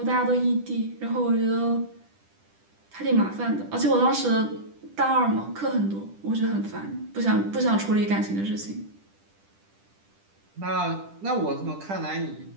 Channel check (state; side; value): late; left; 10 ms